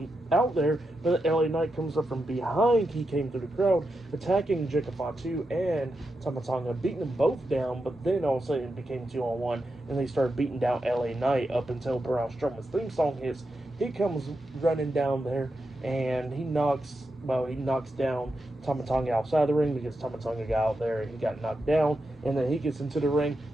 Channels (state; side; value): normal; both; correlation 0.87